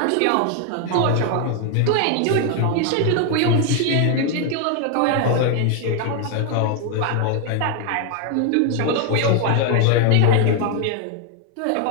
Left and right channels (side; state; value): both; different; correlation 0.00